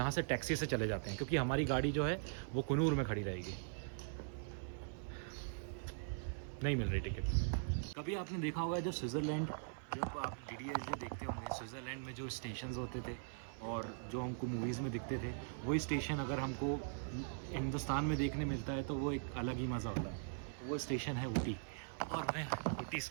से टैक्सी से चले जाते हैं, क्योंकि हमारी गाड़ी जो है वो कुनूर में खड़ी रहेगी। नहीं मिल रही टिकट। कभी आपने देखा होगा जब स्विट्ज़रलैंड, जब आप DDS देखते होंगे, स्विट्ज़रलैंड में जो स्टेशंस होते थे और जो हमको मूवीज़ में दिखते थे, वही स्टेशन अगर हमको हिंदुस्तान में देखने मिलता है तो वो एक अलग ही मज़ा होता है। वो स्टेशन है ऊटी और मैं ऊटी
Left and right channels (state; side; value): silent; left; 50 dB below the other